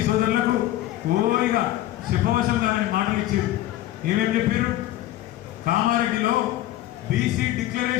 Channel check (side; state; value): right; quieter; 14.5 dB